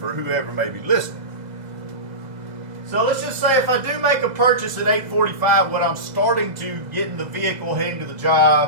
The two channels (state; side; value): late; left; 2.0 ms